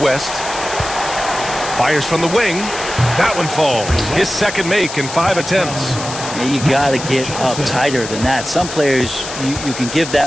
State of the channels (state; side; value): noise; left; hiss, 9 dB below the sound